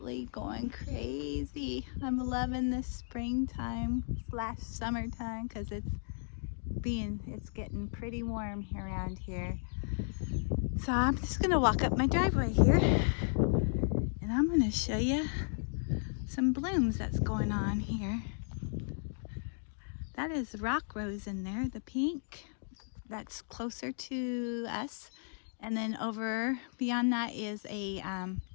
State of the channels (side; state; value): right; silent; digital silence